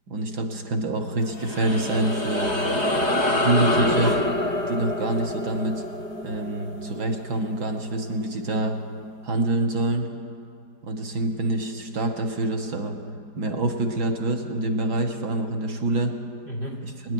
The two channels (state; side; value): late; left; 4.9 ms